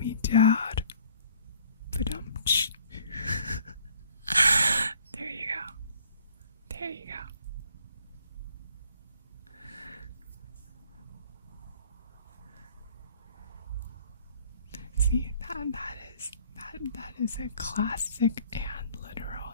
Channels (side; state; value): both; inverted; correlation -0.57